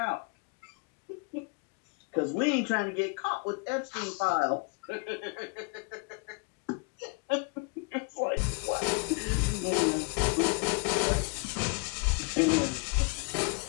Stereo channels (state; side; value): quieter; right; 33.2 dB